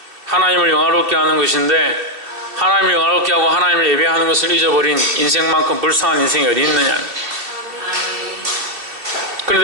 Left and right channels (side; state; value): left; late; 2.7 ms